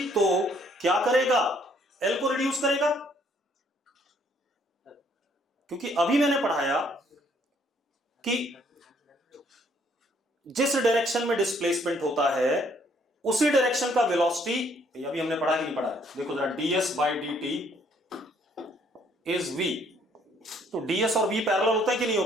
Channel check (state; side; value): normal; both; correlation 0.65